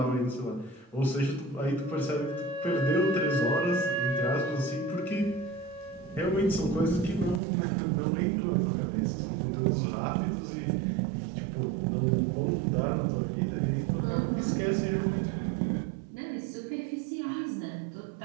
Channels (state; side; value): drops out; left; at 7.4 s